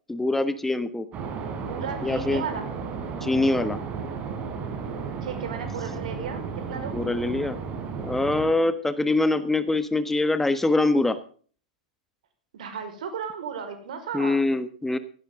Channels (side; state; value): both; normal; correlation 0.75